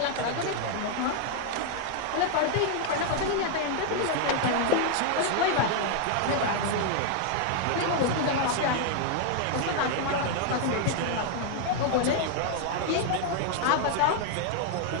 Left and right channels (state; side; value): different; both; correlation 0.00